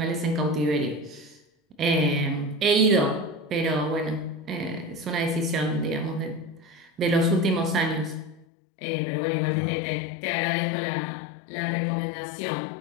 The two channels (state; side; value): drops out; right; at 8.5 s